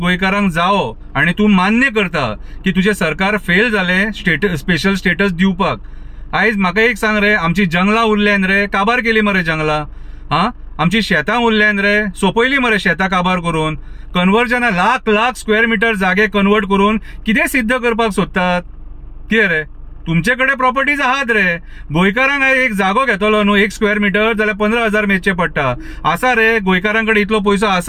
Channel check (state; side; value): identical; both; correlation 1.00